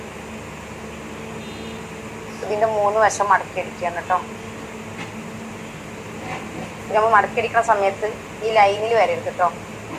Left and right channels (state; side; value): identical; both; correlation 1.00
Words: ഇതിൻ്റെ 3 വശം മടക്കിയടിക്കുകയാണ് കേട്ടോ. നമ്മൾ മടക്കിയടിക്കുന്ന സമയത്ത് ഈ ലൈനിൽ വരരുത് കേട്ടോ.